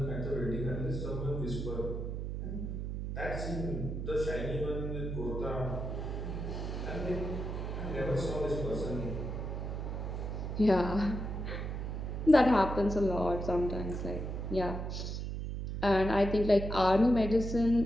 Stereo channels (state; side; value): noise; right; hum, 4 dB below the sound